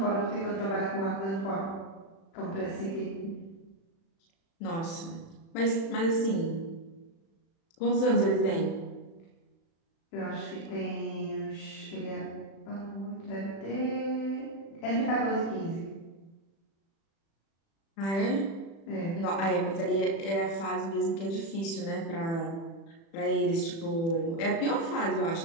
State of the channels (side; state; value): right; late; 36 ms